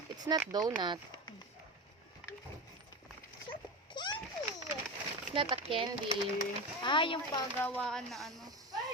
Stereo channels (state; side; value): normal; both; correlation 0.23